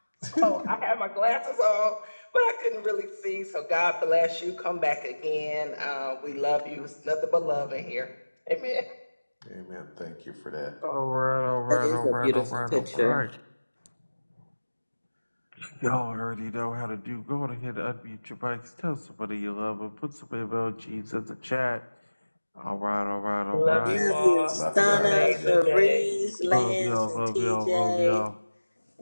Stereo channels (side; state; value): both; inverted; correlation -1.00